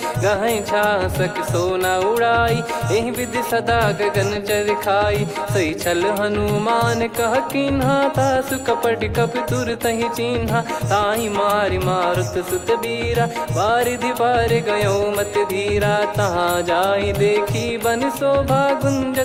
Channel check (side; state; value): both; identical; correlation 1.00